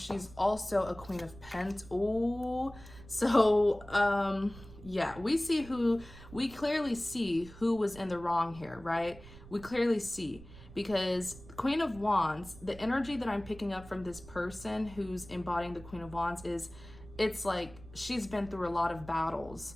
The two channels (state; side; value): noise; right; rumble, 18 dB below the sound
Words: also a Queen of Pentacles. Oh, so yeah, we clearly see who was in the wrong here, right? We clearly see, because Queen of Wands, the energy that I'm picking up from this person who's embodying the Queen of Wands is, it's like she's been through a lot of battles